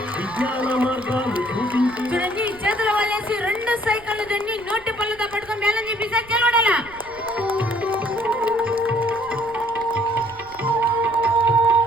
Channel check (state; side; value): noise; right; rumble, 23 dB below the sound